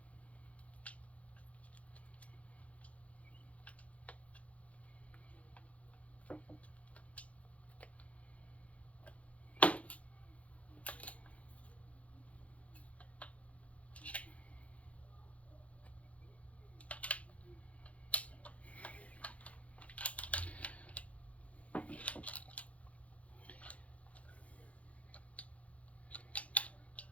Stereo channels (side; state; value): right; late; 0.065 ms